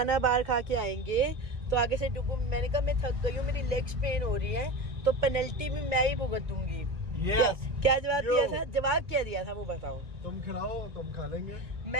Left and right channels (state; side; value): late; left; 1.7 ms